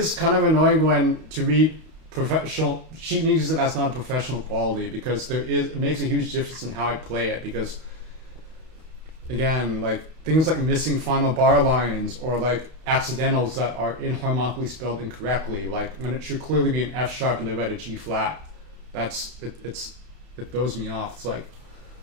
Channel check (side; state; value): left; late; 32 ms